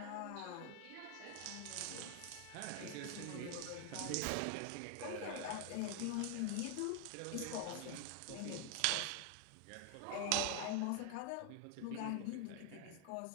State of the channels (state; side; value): different; both; correlation 0.00